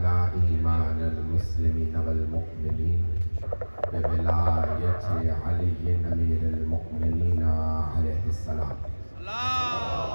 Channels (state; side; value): inverted; both; correlation -1.00